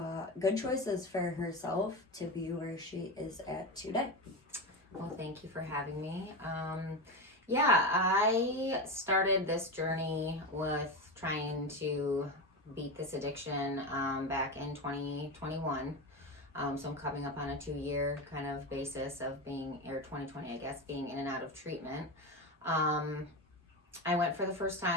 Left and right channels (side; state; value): both; normal; correlation 0.19